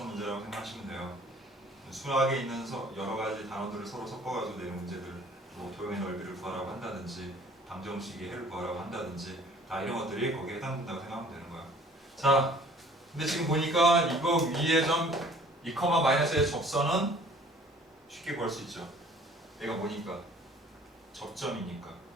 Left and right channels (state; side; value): normal; both; correlation 0.53